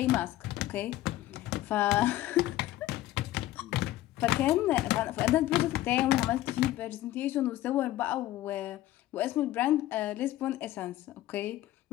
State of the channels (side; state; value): right; quieter; 14.9 dB